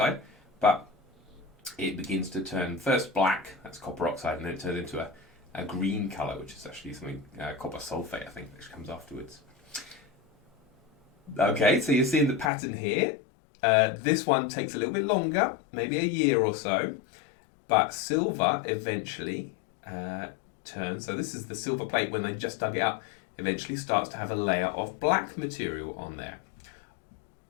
but it begins to turn first black, that's copper oxide, and then it turns into a green colour, which is actually something, copper sulfate, I think, which comes afterwards. Okay, so you're seeing the pattern here. This one takes a little bit longer, maybe a year or so, but silver eventually turns. So this is the silver plate when they just dug it up, eventually starts to have a layer of black material on there.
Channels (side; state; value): right; drops out; at 12.5 s